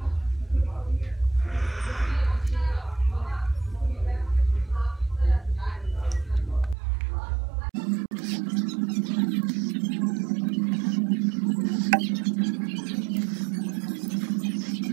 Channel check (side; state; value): left; drops out; at 6.8 s